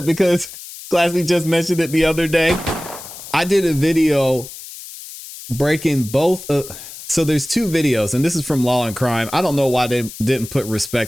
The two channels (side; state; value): left; noise; hiss, 14 dB below the sound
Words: because ClassE just mentioned it the other day. I did a video breaking both. So there's two videos, and this is from Law and Crime. I don't know why they didn't put